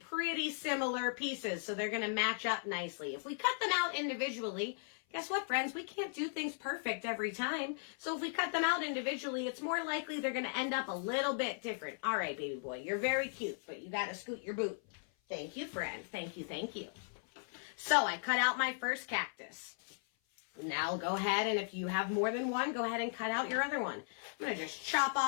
similar pieces, so they're going to match up nicely. If we cut them out individually, guess what, friends? We can't do things perfect every time. So if we cut them out individually, it's more likely they're going to end up a little bit different. All right, baby boy, you're very cute, but you got to scoot your boot. Thank you, friend. Thank you, thank you. So I cut out my first cactus. Now go ahead, and if you have more than one, go ahead and cut out your other one. I'm going to just chop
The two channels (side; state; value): right; silent; 53 dB below the other